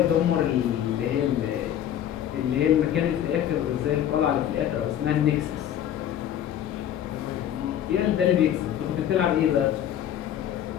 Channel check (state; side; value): quieter; right; 10.6 dB